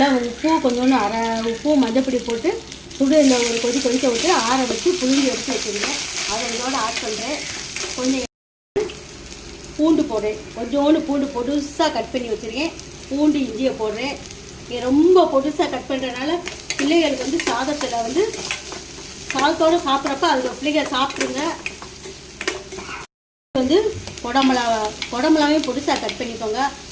உப்பு கொஞ்சோண்டு உப்பு மஞ்சப்பொடி போட்டு சுடுல ஒரு கொதிக்க விட்டு ஆற வச்சு புளிஞ்சு எடுத்து வச்சுருக்கேன். அதை இதோட ஆட் பண்ணுறேன். கொஞ்சம் பூண்டு போடுறேன். கொஞ்சோண்டு பூண்டு பொடுசாக கட் பண்ணி வச்சுருக்கேன். பூண்டு இஞ்சியை போடுறேன். ரொம்ப பொடுசாக கட் பண்ணுறதுனால பிள்ளைகளுக்கு சாதத்தில் சாதத்தோடு சாப்பிட்றப்ப அதில் பிள்ளைகள் சாப்பிட்ருங்க. குடமிளகாவையும் பொடுசாக கட் பண்ணிக்கோங்க.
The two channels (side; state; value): both; identical; correlation 1.00